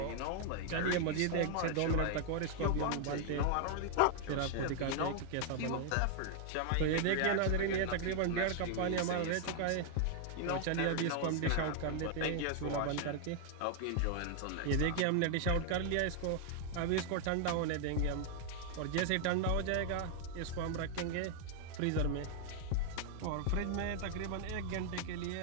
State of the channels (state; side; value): different; both; correlation 0.00